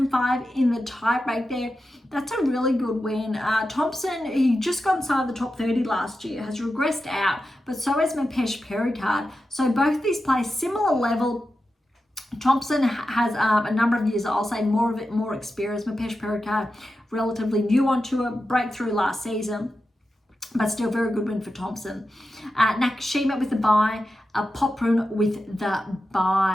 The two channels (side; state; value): both; normal; correlation 0.91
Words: in the tiebreak there. That's a really good win. Thompson, he just got inside the top 30 last year, has regressed out, but so has Mapesh Pericard. So both these play similar level. Thompson has a number of years, I'll say more experience. Mapesh Pericard, relatively new on tour, breakthrough last season, but still very good win for Thompson. Nakashima with the bye, Poprun with the